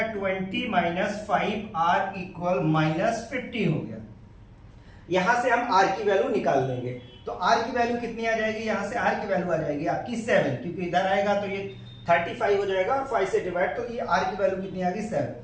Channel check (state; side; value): identical; both; correlation 1.00